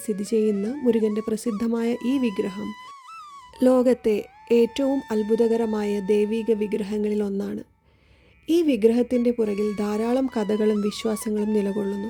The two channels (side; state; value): both; identical; correlation 1.00